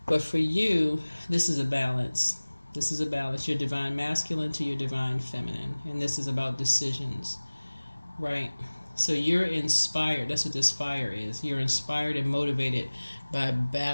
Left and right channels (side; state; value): both; inverted; correlation -1.00